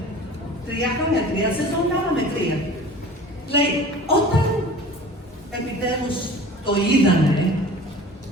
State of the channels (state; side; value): normal; both; correlation 0.41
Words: 3 χρόνια, 3 σεζόν, κάναμε 3. Λέει, όταν επιτέλους το είδανε,